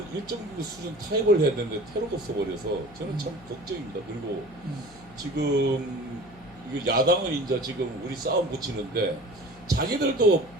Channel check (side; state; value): left; noise; hum, 22 dB below the sound